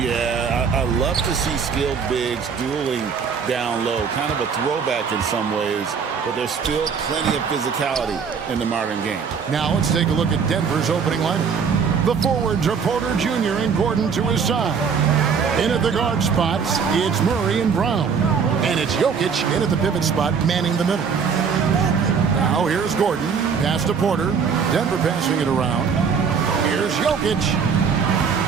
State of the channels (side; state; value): left; quieter; 6.2 dB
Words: I love to see skilled bigs dueling down low. Kind of a throwback in some ways, but there's still plenty of physicality in the modern game. Now let's take a look at Denver's opening lineup. The forwards are Porter Jr. and Gordon to his side. In at the guard spots, it's Murray and Brown. And it's Jokic in at the pivot spot, manning the middle. Now here's Gordon. Pass to Porter. Denver passing it around. Here's Jokic.